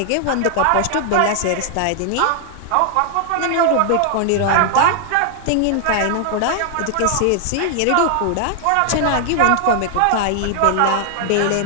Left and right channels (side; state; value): both; different; correlation 0.00